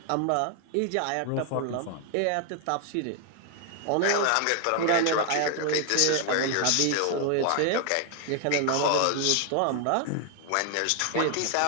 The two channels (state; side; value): different; both; correlation 0.00